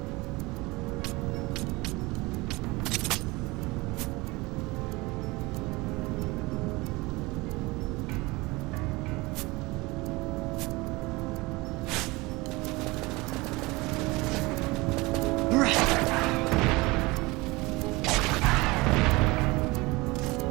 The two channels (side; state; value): left; quieter; 23.0 dB